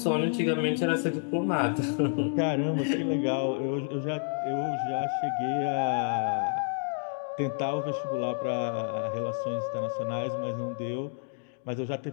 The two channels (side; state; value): right; silent; 58 dB below the other